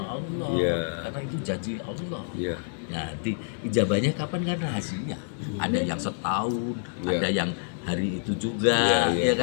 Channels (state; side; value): silent; right; digital silence